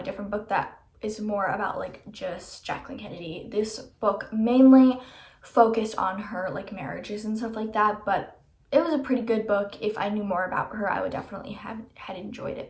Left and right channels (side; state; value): both; identical; correlation 1.00